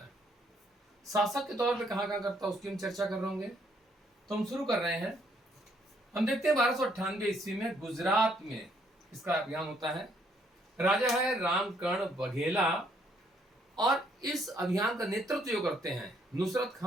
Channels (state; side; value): normal; both; correlation 0.69